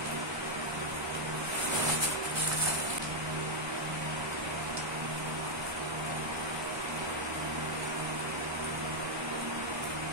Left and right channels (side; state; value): left; late; 1.2 ms